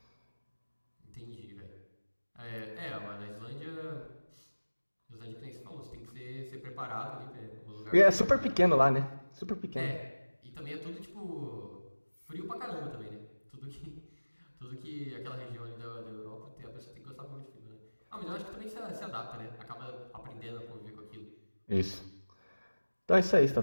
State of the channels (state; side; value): inverted; both; correlation -1.00